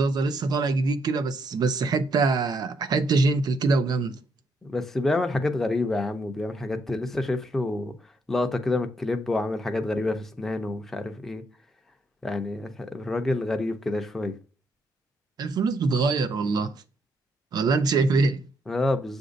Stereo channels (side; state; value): both; normal; correlation 0.75